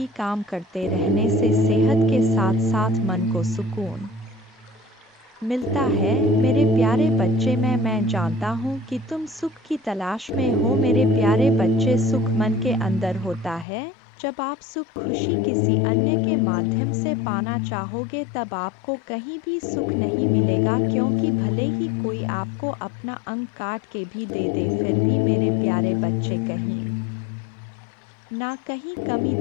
काम करते रहने से सेहत के साथ साथ मन को सुकून मिलता है। मेरे प्यारे बच्चे, मैं जानता हूँ कि तुम सुख की तलाश में हो। मेरे प्यारे बच्चे, सुख मन के अंदर होता है। जब आप सुख खुशी किसी अन्य के माध्यम से पाना चाहोगे, तब आपको कहीं भी सुख नहीं मिलेगा, क्योंकि भले ही कोई आपको अपना अंग काट के भी दे दे, फिर भी मेरे प्यारे बच्चे कहीं ना कहीं कमी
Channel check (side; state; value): right; drops out; at 13.7 s